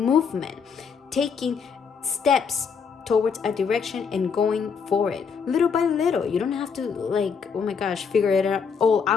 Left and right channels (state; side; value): quieter; right; 6.1 dB